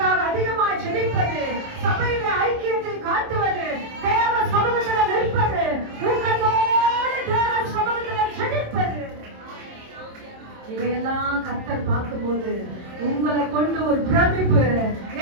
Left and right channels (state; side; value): late; left; 27 ms